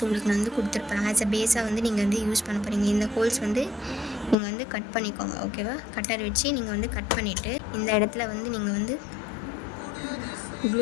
உங்களுக்கு நான் வந்து கொடுத்துருப்பேன். ஆஸ் அ பேஸாக வந்து நீங்கள் வந்து யூஸ் பண்ண போகிறீங்க. இந்த ஹோல்ஸ் வந்து நீங்கள் வந்து கட் பண்ணிக்கோங்க ஓகேவா. கட்டர் வச்சு நீங்கள் வந்து கட் பண்ணிவிட்டு இந்த இடத்துல வந்து நீங்கள் வந்து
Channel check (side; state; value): right; drops out; at 4.4 s